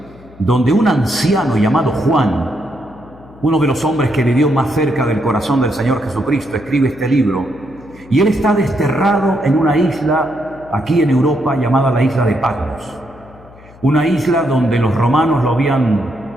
donde un anciano llamado Juan, uno de los hombres que vivió más cerca del corazón del Señor Jesucristo, escribe este libro. Y él está desterrado en una isla aquí en Europa llamada la isla de Patmos. Una isla donde los romanos lo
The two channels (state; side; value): noise; left; hum, 23 dB below the sound